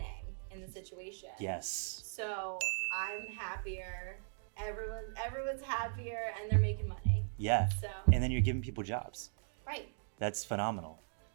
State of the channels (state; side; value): silent; left; digital silence